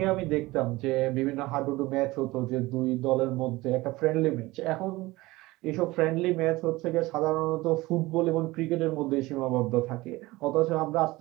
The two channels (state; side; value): quieter; left; 20.1 dB